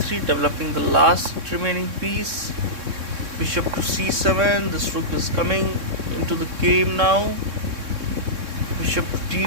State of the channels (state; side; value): late; left; 3.6 ms